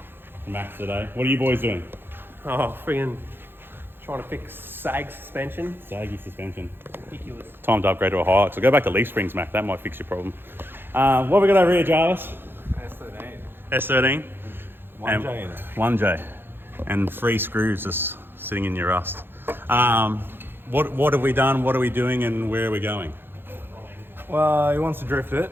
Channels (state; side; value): late; left; 0.10 ms